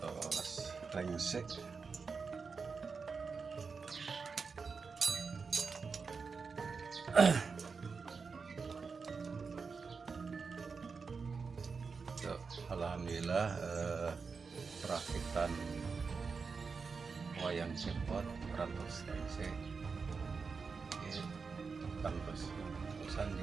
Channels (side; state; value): left; quieter; 5.0 dB